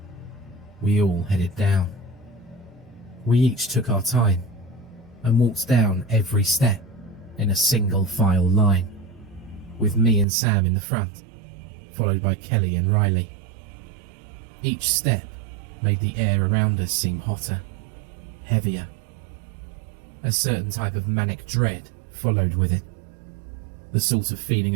we all headed down. We each took our time and walked down every step in a single file line, with me and Sam in the front, followed by Kelly and Riley. Each step made the air around us seem hotter, heavier. A certain type of manic dread followed with it. The sort of feeling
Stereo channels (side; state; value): left; drops out; at 10.2 s